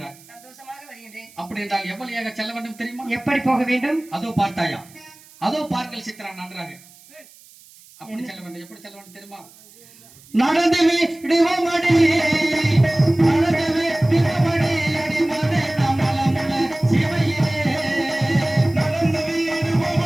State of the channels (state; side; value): noise; right; hiss, 24 dB below the sound